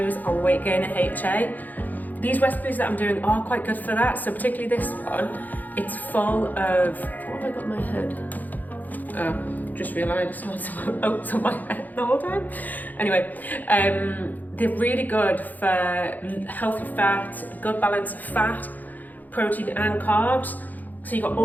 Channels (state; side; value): late; right; 0.083 ms